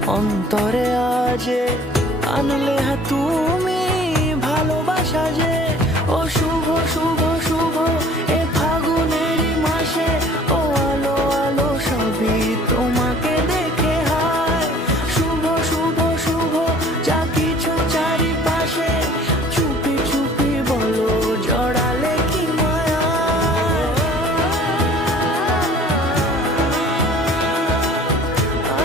অন্তরে আজে আনলে হ্যাঁ তুমি ভালোবাসা যে। ও শুভ শুভ শুভ এ ফাগুনেরই মাসে, ও আলো আলো সবই তোমাকে দেখে হায়। শুভ শুভ শুভ যা কিছু চারিপাশে, চুপি চুপি বলো জড়ালে কি মায়া।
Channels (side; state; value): both; normal; correlation 0.51